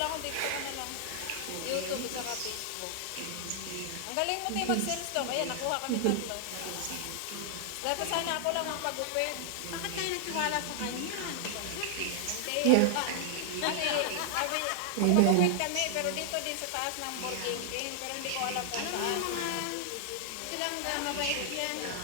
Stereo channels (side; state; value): both; different; correlation -0.01